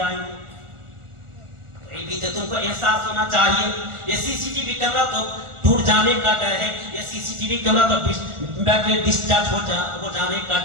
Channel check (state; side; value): late; left; 1.4 ms